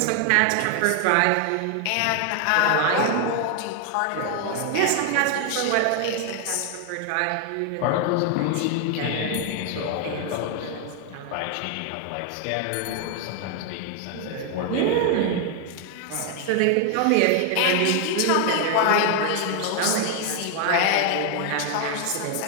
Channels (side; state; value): both; different; correlation 0.00